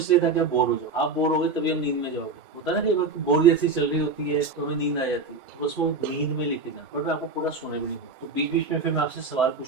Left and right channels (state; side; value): quieter; left; 4.0 dB